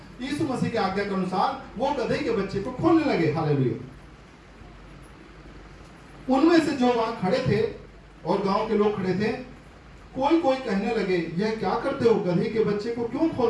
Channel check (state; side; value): identical; both; correlation 1.00